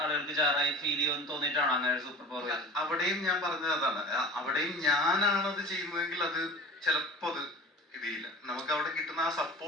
ജാറായി ഫീൽ ചെയ്യുമെന്ന് തോന്നിയിട്ടാണോ അങ്ങനെ ഒരു സൂപ്പർ പവർ? അവിടെയും ഞാൻ പറഞ്ഞത് അതാണ്. അവിടെയും ഞാനാണത് ചെയ്യുന്നതെങ്കിൽ അത് ചിലപ്പോ അത് ഇതില്ല. നമുക്ക് അവിടെ കിട്ടുന്ന ആ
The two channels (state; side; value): normal; both; correlation 0.36